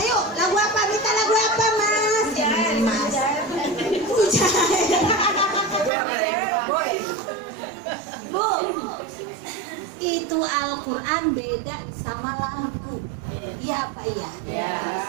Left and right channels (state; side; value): drops out; left; at 5.9 s